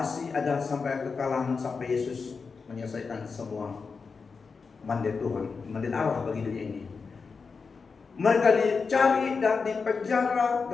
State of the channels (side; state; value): right; quieter; 5.0 dB